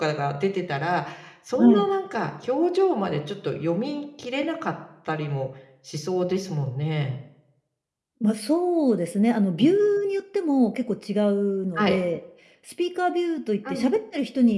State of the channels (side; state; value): both; identical; correlation 1.00